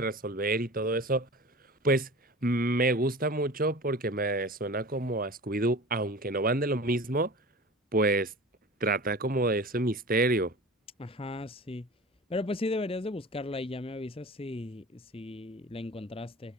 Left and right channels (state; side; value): normal; both; correlation 0.36